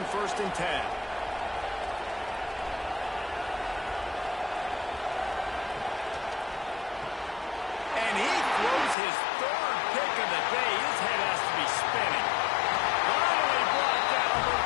1st and 10. His 3rd pick of the day. His head has to be spinning. Finally brought down, but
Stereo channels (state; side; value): drops out; right; at 9.0 s